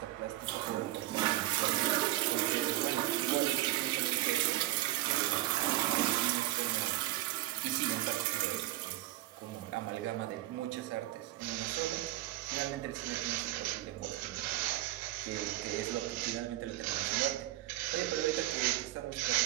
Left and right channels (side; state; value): left; quieter; 16.0 dB